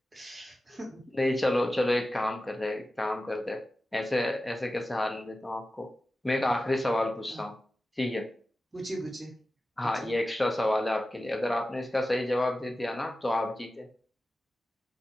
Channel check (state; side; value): normal; both; correlation 0.94